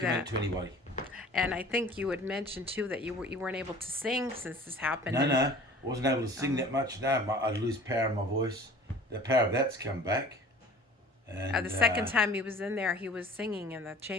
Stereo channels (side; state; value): both; normal; correlation 0.46